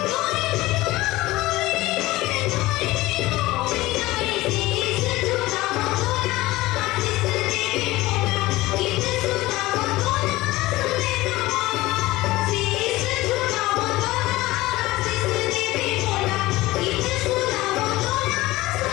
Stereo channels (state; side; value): quieter; right; 18.7 dB